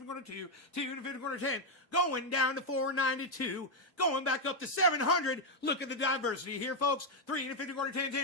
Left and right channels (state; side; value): normal; both; correlation 0.02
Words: quarter 2, 2 and a 15 quarter 10, going down to 492, going back up to 700. Look at the diversity here, folks. 3 and a 15 quarter 10,